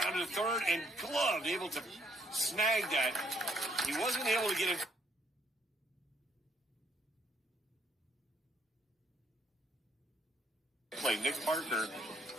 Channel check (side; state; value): both; normal; correlation 0.70